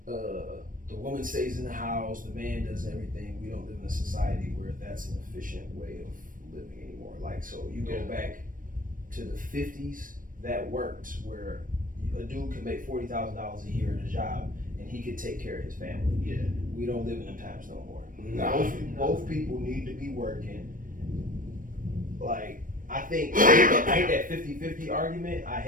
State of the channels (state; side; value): late; left; 0.40 ms